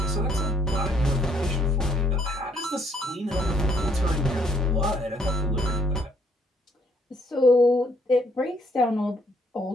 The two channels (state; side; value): normal; both; correlation 0.67